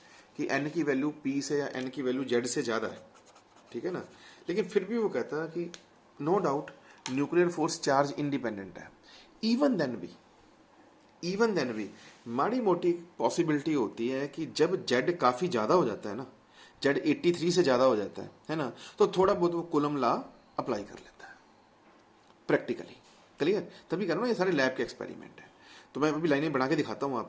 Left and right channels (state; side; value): identical; both; correlation 1.00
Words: कि एन की वैल्यू पी से या एन की वैल्यू जेड से ज़्यादा है, ठीक है ना। लेकिन फिर भी वो कहता है कि no doubt nuclear force charge independent है। इवन देन भी माड़ी मोटी पॉसिबिलिटी होती है कि जब जेड काफ़ी ज़्यादा हो जाता है ना, जेड 83 से ज़्यादा हो जाता है ना, तो थोड़ा बहुत वो कूलम लॉ अप्लाई कर लेता है प्रैक्टिकली। क्लियर? तभी कह रहा हूँ ये सारे लैब के एक्सपेरिमेंट है। तो मैं अभी लाइनें बना के दिखाता हूँ